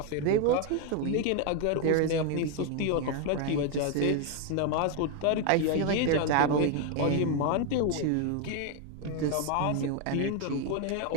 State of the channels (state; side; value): different; both; correlation 0.01